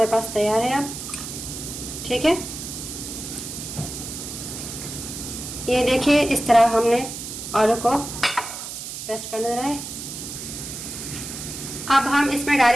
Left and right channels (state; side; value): noise; right; hiss, 8 dB below the sound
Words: पास तैयार है अब। ठीक है, ये देखिए, इस तरह हमने आलू को पेस्ट कर देना है। अब हम इसमें